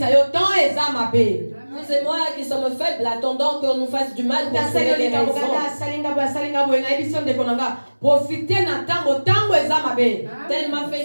Vous et moi qui sommes faibles, attendons qu'on nous fasse du mal pour trouver les raisons. Tel m'a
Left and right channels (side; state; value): both; inverted; correlation -1.00